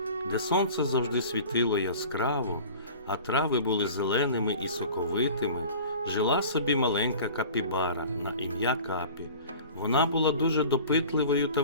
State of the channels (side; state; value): both; inverted; correlation -0.42